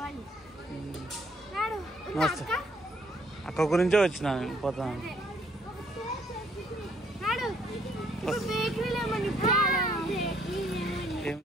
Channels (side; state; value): both; normal; correlation 0.66